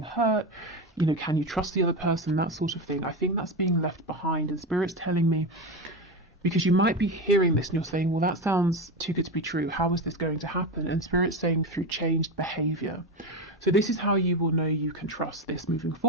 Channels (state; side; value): normal; both; correlation 0.18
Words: hurt, you know, can you trust the other person, that sort of thing. I think that's being left behind, and Spirit's telling me, because you might be hearing this and you're saying, well, that sounds too good to be true, how is this going to happen? And Spirit's saying through changed behavior. So this is how you will know you can trust this moving